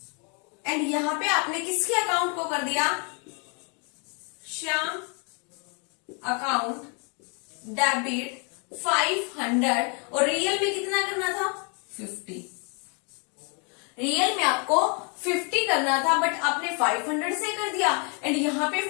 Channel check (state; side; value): quieter; right; 36.2 dB